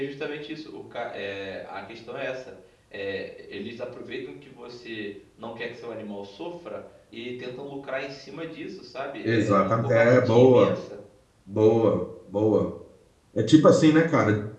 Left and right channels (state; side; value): identical; both; correlation 1.00